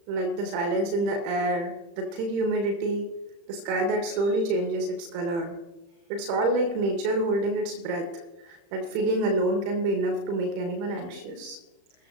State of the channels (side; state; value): left; late; 35 ms